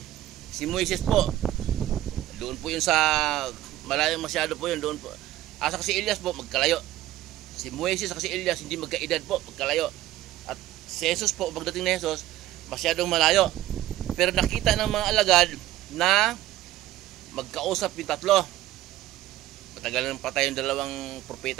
Si Moises po, doon po yun sa malayo masyado po yun, doon po. Asa si Elias po, magkalayo. Si Moises at si Elias hindi magkaedad po, magkalayo. At si Jesus po, pagdating ni Jesus, masyadong malayo. Pero nakita ng mga alagad na magkausap yung 3. Matagal nang patay yung 2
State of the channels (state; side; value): quieter; left; 14.6 dB